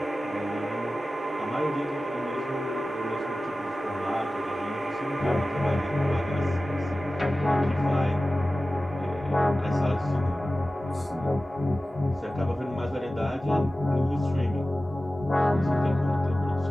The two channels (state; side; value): normal; both; correlation 0.95